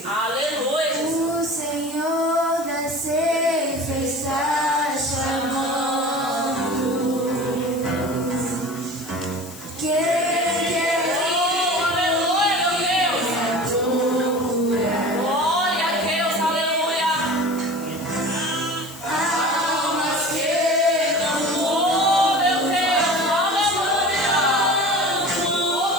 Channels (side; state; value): left; noise; hiss, 17 dB below the sound